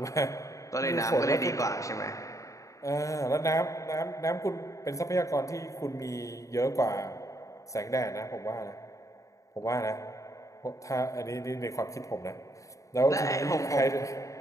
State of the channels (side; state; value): right; late; 0.16 ms